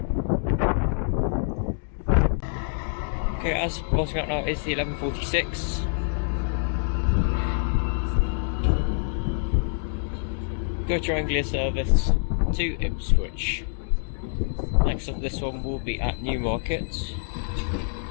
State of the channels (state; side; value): silent; right; digital silence